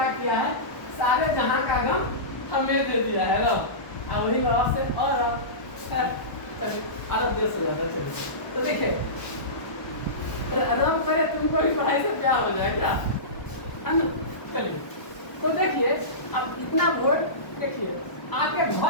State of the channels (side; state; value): right; late; 1.1 ms